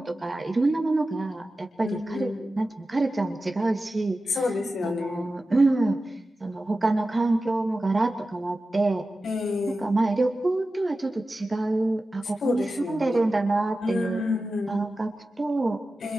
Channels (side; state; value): both; normal; correlation 0.94